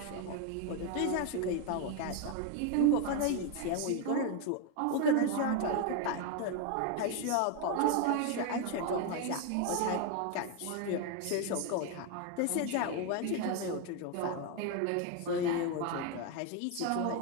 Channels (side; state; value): both; different; correlation 0.01